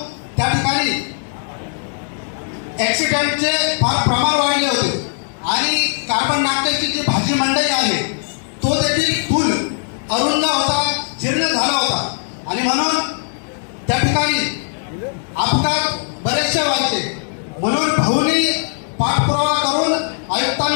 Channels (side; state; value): right; silent; 66 dB below the other